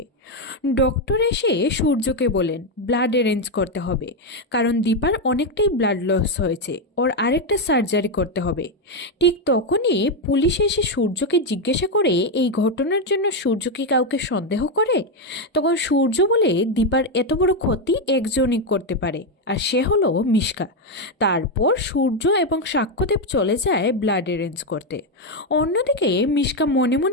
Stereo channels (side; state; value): both; normal; correlation 0.05